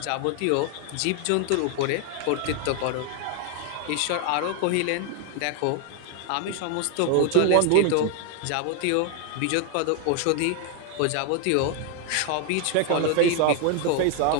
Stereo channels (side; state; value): both; different; correlation 0.00